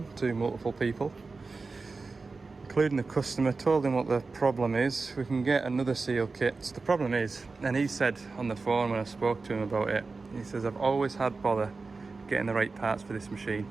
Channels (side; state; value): left; quieter; 4.0 dB